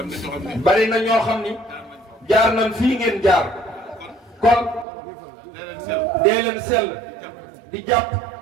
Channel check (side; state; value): left; drops out; at 4.9 s